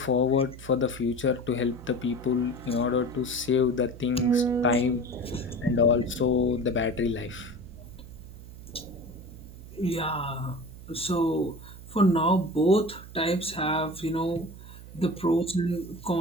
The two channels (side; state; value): right; noise; hum, 16 dB below the sound